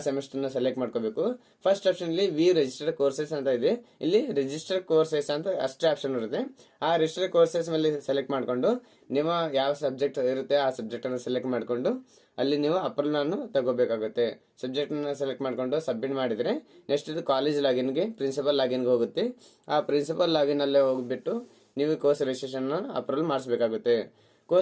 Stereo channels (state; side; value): identical; both; correlation 1.00